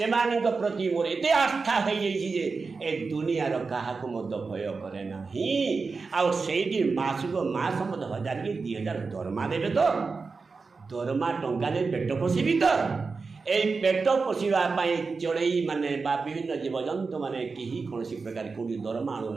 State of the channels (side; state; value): left; quieter; 4.5 dB